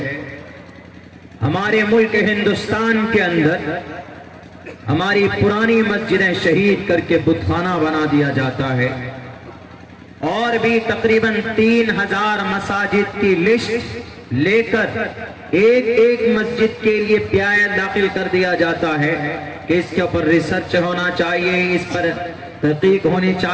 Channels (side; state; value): both; identical; correlation 1.00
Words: ہمارے ملک ہندوستان کے اندر ہماری پرانی مسجدیں شہید کر کے بت خانہ بنا دیا جاتا ہے، اور بھی تقریباً 3000 مساجد کی لسٹ لے کر ایک ایک مسجد کے لیے پیایا داخل کر دیا جاتا ہے کہ اس کے اوپر ریسرچ ہونا چاہیے، اس پر تحقیق ہونی